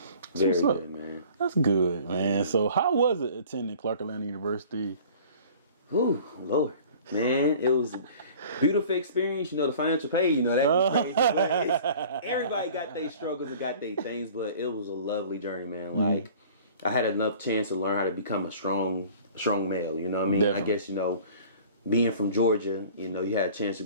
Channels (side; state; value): both; inverted; correlation -0.47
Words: Very good, man. That's good, man. So how was it attending Clark Atlanta University? Whew, Lord. Man, it was a beautiful experience. You know, the financial pay, you know, that was crazy. But everybody got their struggles and got their things, but it was a lovely journey, man. Mm-hmm. Like, I had enough chance to learn how to become a strong male, you know what I mean? Definitely. I guess, you know, being from Georgia, you know, you had a chance to